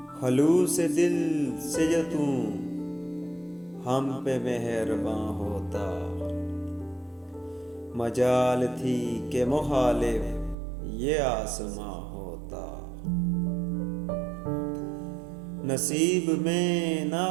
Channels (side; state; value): left; drops out; at 10.6 s